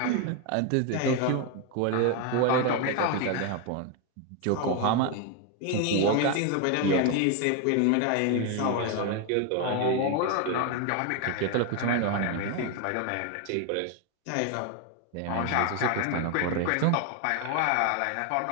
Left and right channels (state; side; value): different; both; correlation 0.01